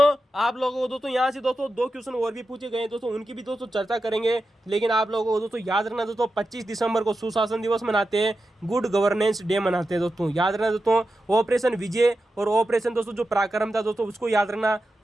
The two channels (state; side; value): normal; both; correlation 0.90